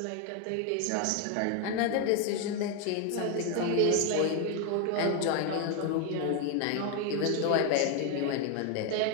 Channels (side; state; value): both; different; correlation 0.01